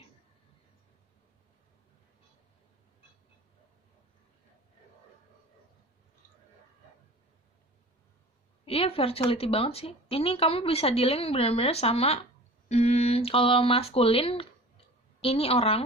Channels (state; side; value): normal; both; correlation 0.40